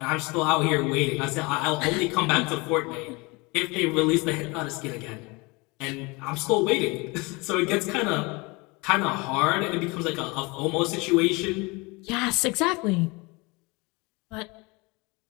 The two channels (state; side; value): quieter; right; 26.3 dB